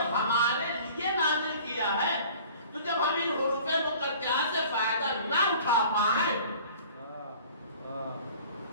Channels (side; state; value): both; inverted; correlation -0.47